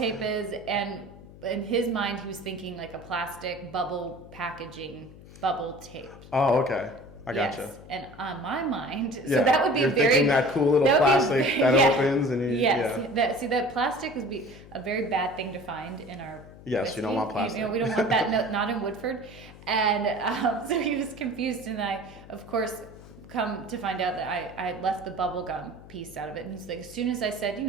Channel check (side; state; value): left; noise; hum, 19 dB below the sound